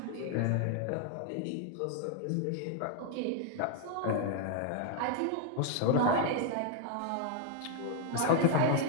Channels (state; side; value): different; both; correlation -0.01